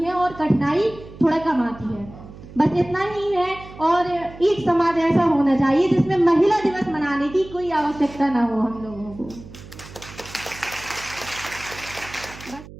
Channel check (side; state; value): right; noise; hum, 17 dB below the sound